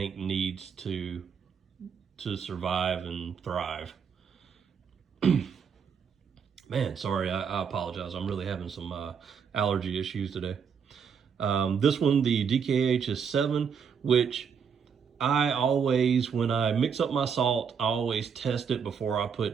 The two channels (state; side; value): quieter; left; 6.8 dB